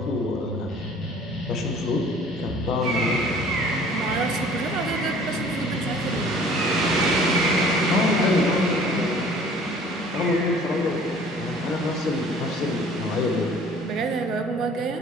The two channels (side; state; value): both; normal; correlation 0.51